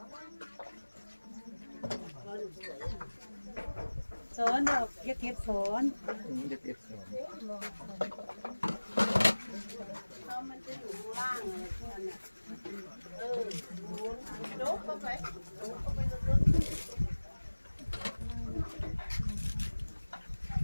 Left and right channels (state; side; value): inverted; both; correlation -1.00